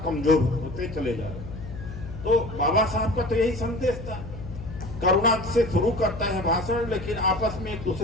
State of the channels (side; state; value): left; noise; hum, 11 dB below the sound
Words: कमजोर होते चले जा रहे हैं। तो बाबा साहब का तो यही संदेश था, करुणा से शुरू करता है भाषण, लेकिन आपस में एक